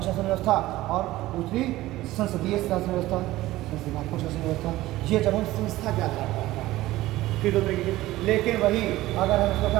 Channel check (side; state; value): left; quieter; 16.8 dB